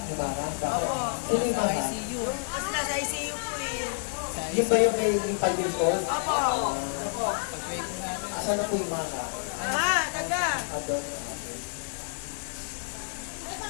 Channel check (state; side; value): silent; right; 59 dB below the other